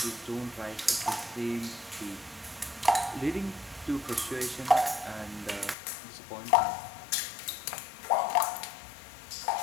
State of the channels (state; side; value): drops out; right; at 5.8 s